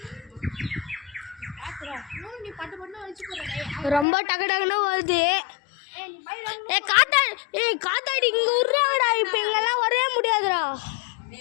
நீ பட்டு பட்டு வச்சு போற. ரொம்ப டக்கு டக்குன்னு வருது. காத்தாடி இங்க விடுறாங்கடா. இப்ப இங்கெல்லாம் வரவே முடியாதுடா.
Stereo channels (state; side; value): drops out; right; at 4.0 s